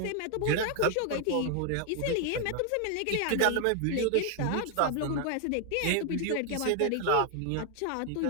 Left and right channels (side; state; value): both; different; correlation 0.00